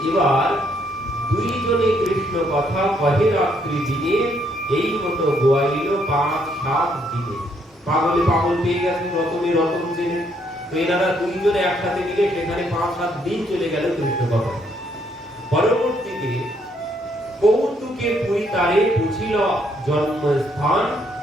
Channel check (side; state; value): both; normal; correlation 0.71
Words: এবার দুইজনে কৃষ্ণ কথা কহে রাত্রি দিনে, এই মতো গোয়াইল 5-7 দিনে। পাগলে পাগল পেয়ে গেছেন, রতনে রতন চেনে। তো এনারা দুইজনে একসাথে মিলে সেখানে 5-7 দিন চলে গেল কৃষ্ণ কথা। পরবর্তীতে কৌতুকে পুরী তারে বুঝিল জন্মস্থান,